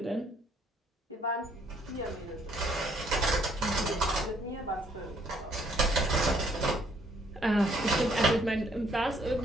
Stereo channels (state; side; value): normal; both; correlation 0.65